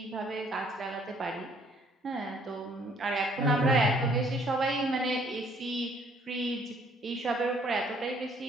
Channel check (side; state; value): both; normal; correlation 0.62